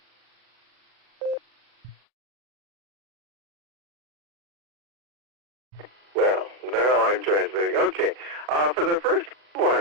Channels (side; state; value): left; late; 33 ms